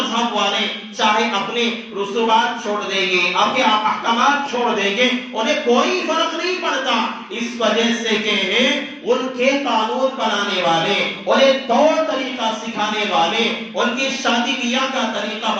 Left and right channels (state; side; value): identical; both; correlation 1.00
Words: والے چاہے اپنے رسومات چھوڑ دیں گے، اپنے احکامات چھوڑ دیں گے، انہیں کوئی فرق نہیں پڑتا، اس وجہ سے کہ ان کے قانون بنانے والے، انہیں طور طریقہ سکھانے والے، ان کی شادی بیاہ کا طریقہ